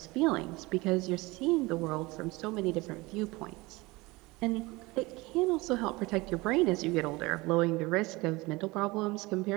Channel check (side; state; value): left; quieter; 22.6 dB